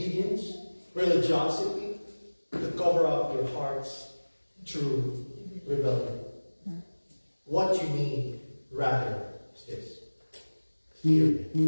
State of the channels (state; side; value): inverted; both; correlation -1.00